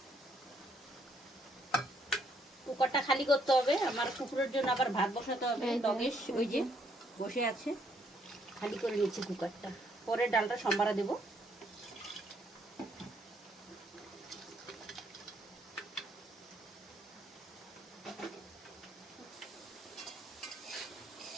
কুকারটা খালি করতে হবে, আমার কুকুরের জন্য আবার ভাত বসাতে হবে। লগেশ ওই যে বসে আছে, খালি করে নিচ্ছি কুকারটা, পরে ডালটা সম্বারা দেব।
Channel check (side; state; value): both; normal; correlation 0.70